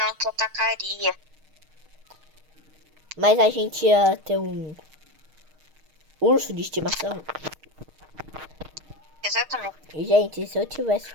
te atacaria. Mas a gente ia ter um urso de estimação. Exatamente. E, gente, se eu tivesse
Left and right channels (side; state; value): left; late; 6.5 ms